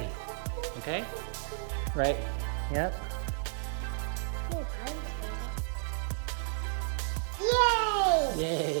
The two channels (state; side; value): silent; left; digital silence